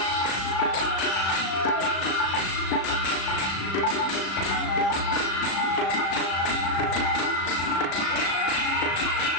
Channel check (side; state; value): right; late; 36 ms